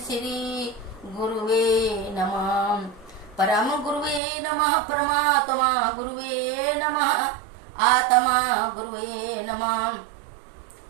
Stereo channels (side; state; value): left; drops out; at 4.2 s